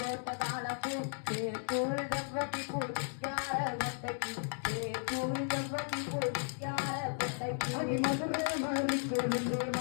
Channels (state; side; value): silent; right; digital silence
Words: காலப்பூ கூழ் செவ்வட்டி குடிக்கார கொட்டைக்கு கூழ் செவ்வட்டி குடிக்கார கொட்டைக்கு மதுரை மறி கொழுந்து